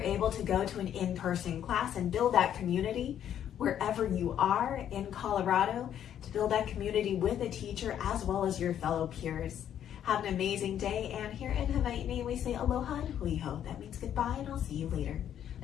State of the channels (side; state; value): right; quieter; 10.0 dB